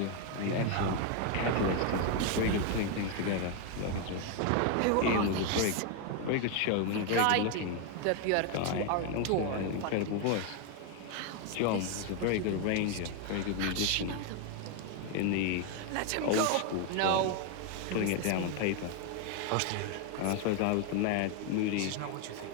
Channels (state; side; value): different; both; correlation 0.01